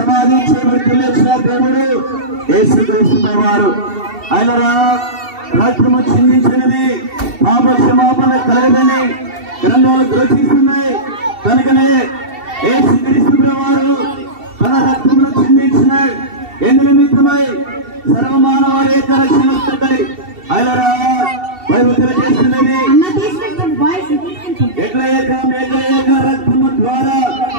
చేయబడి లేచిన దేవుడు యేసుక్రీస్తు ప్రభువారు. ఆయనరా రక్తము చిందించినది పాప క్షమాపణ కలగదని గ్రంథాలు ఘోషిస్తున్నాయి. కనుకనే యేసుక్రీస్తు ప్రభువారు తన రక్తమును చిందించిన ఎందు నిమిత్తమై సర్వమానవారి యొక్క రక్షణ ఆయనరా బైబిల్ తెలియజేస్తున్నది. ఎట్ల ఏక రక్తము ద్వారా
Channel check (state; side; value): late; left; 2.7 ms